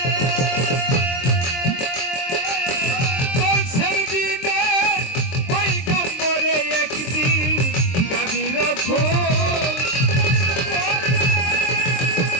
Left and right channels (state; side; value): late; right; 23 ms